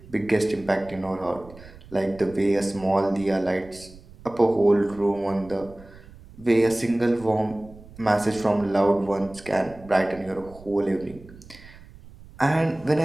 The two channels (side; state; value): right; noise; rumble, 20 dB below the sound